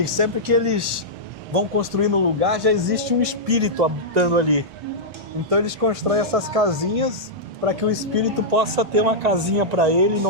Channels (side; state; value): both; normal; correlation -0.10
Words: sempre que eles vão construir no lugar, já existe um espírito habitando ali. Então eles constroem essas casinhas para que o espírito possa ter uma casinha para ele e